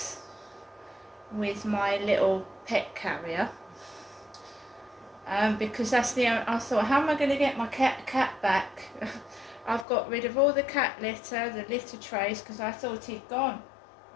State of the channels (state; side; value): drops out; right; at 9.9 s